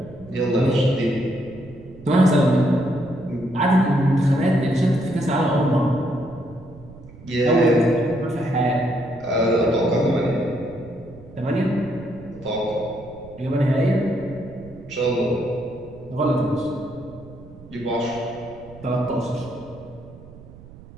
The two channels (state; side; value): noise; right; rumble, 20 dB below the sound